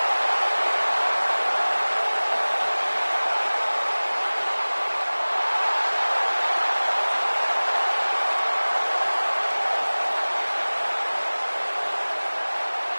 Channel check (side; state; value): both; inverted; correlation -1.00